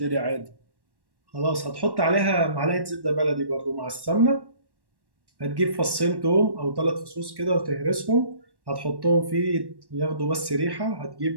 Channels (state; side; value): late; left; 1.1 ms